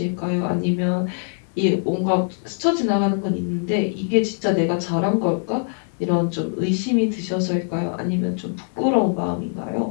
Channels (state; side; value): silent; right; 64 dB below the other